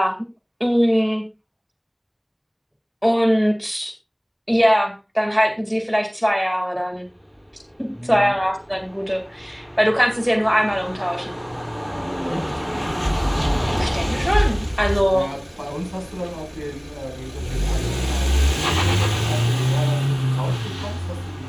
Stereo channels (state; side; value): identical; both; correlation 1.00